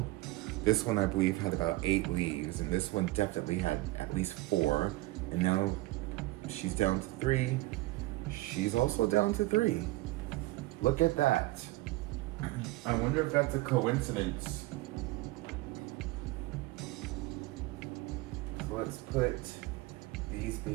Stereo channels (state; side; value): quieter; left; 19.5 dB